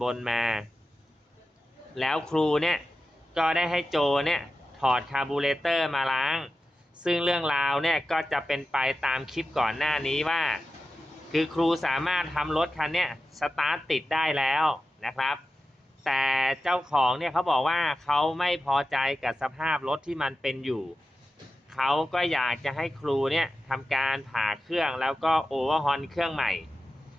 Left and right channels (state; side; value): normal; both; correlation 0.92